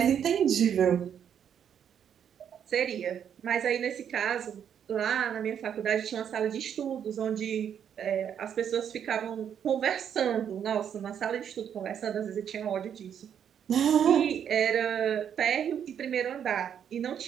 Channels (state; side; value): quieter; left; 8.6 dB